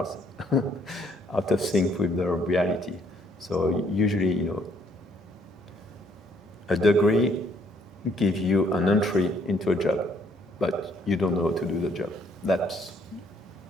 out of sync with the reality. So usually, a degree gives you an entry into a job, but you don't know how to do the job. That's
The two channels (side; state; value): both; normal; correlation 0.66